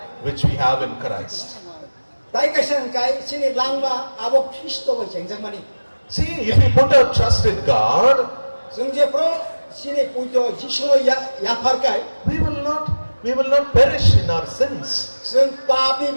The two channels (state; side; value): inverted; both; correlation -1.00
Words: which we have in Christ. Tai kaisang kai sini lang ma abo Kristo ba chengjak mani. See, if we put our trust in God, Sungje pro sini pujo Jisu ya far kai. we will not perish in our sins. Sung papi